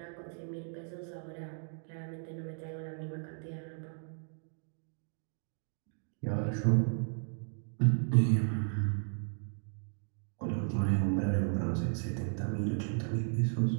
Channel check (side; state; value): left; silent; 54 dB below the other